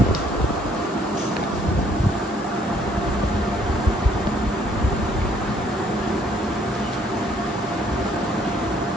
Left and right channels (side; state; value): both; normal; correlation 0.64